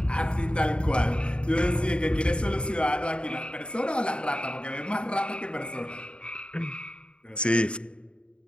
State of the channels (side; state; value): right; late; 0.054 ms